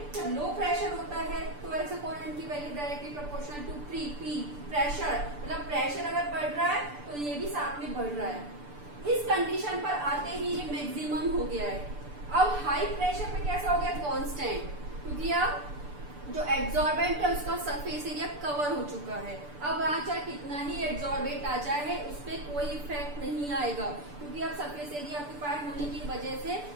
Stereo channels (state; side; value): late; left; 6.8 ms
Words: जब लो प्रेशर होता है तो x अपॉन m की value directly proportional to p pressure, मतलब प्रेशर अगर बढ़ रहा है तो ये भी साथ में बढ़ रहा है। इस कंडीशन पर आते ही ये मैक्सिमम हो गया है। अब हाई प्रेशर पे कैसा हो गया, कांस्टेंट, क्योंकि अब जो एड्सॉर्बेंट है उसका सरफेस एरिया कवर हो चुका है। अब वहां चाहे कितना ही एड्सॉर्बेंट आ जाए उस पर कोई इफेक्ट नहीं आएगा, क्योंकि अब सरफेस एरिया ऑक्यूपाइड होने की वजह से